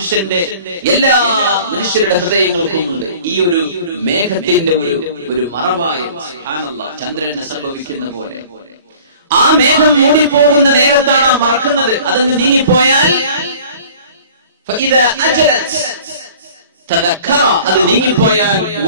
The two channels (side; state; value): both; inverted; correlation -0.47